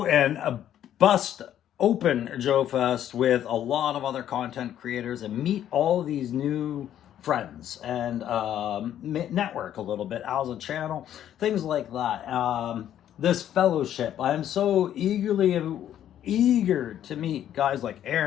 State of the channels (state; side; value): quieter; right; 10.9 dB